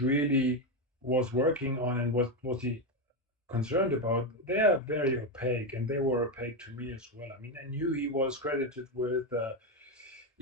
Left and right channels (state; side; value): normal; both; correlation 0.09